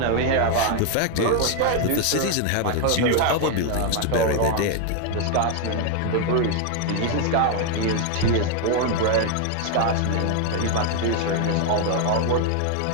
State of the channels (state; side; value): different; both; correlation 0.01